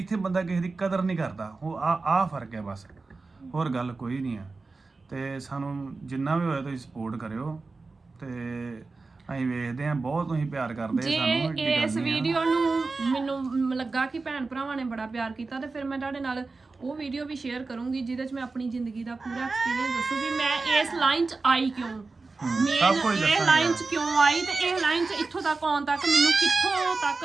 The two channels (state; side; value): quieter; left; 3.9 dB